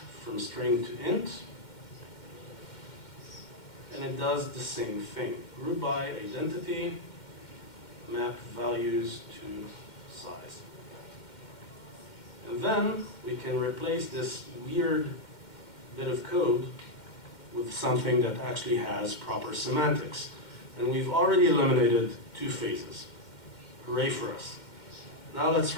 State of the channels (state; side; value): late; right; 2.1 ms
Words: string to int, and it does the same thing. Group by identity, map values to size. And then we can replace this weird bit of code with something that actually has proper semantics. And we've already eliminated 2 phases. Hooray for us. Now let's